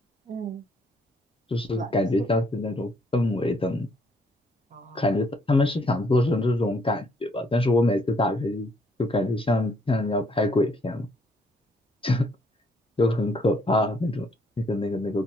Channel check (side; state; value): both; normal; correlation 0.68